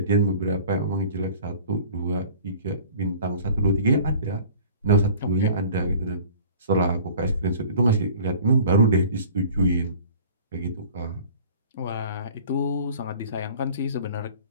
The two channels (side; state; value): both; inverted; correlation -0.46